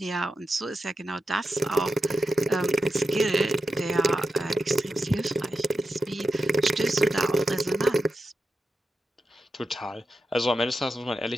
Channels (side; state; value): both; normal; correlation 0.90